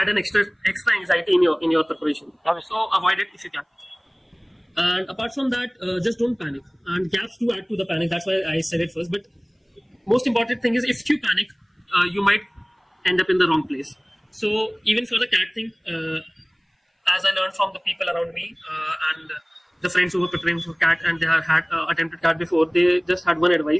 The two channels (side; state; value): both; identical; correlation 1.00